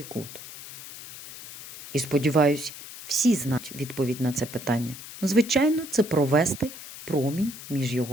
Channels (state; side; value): noise; left; hiss, 14 dB below the sound